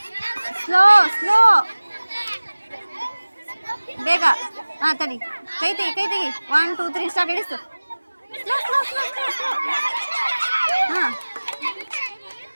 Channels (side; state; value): both; inverted; correlation -1.00